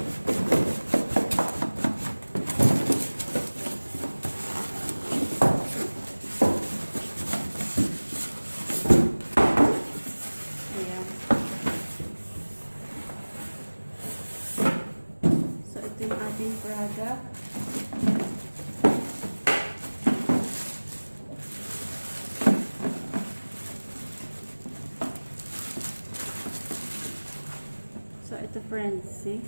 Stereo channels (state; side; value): inverted; both; correlation -1.00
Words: Yung ating product. So, ito friends, see?